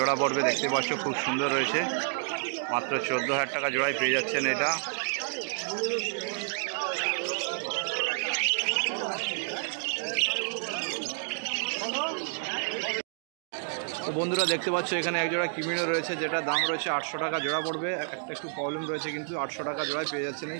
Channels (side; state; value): left; silent; digital silence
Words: পড়বে। দেখতে পাচ্ছ খুব সুন্দর রয়েছে, মাত্র 14,000 টাকা জোড়ায় পেয়ে যাচ্ছেন এটা। তো বন্ধুরা দেখতে পাচ্ছ এখানে এক জোড়া কিমিনো রয়েছে, যেটা দাম রয়েছে 800 টাকা জোড়া পড়বে। একটু প্রবলেম রয়েছে, কিন্তু 800 টাকা জোড়ায় পেয়ে যাচ্ছেন এই